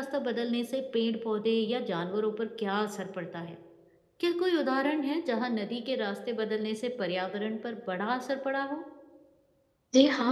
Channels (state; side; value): identical; both; correlation 1.00